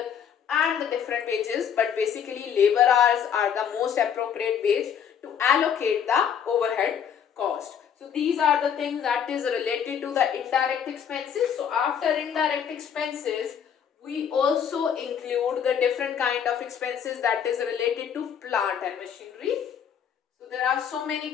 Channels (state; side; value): quieter; right; 8.1 dB